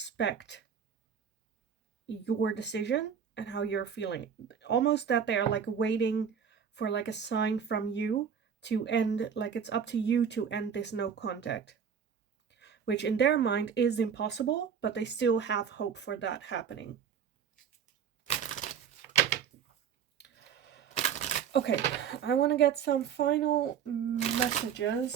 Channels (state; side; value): quieter; left; 7.6 dB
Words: your decision and how you're feeling. Almost that they are like waiting for like a sign from you to end, like it's up to you to end this no contact, which in their mind is impossible, but they still have hope for that happening. Okay, I want to get some final messages.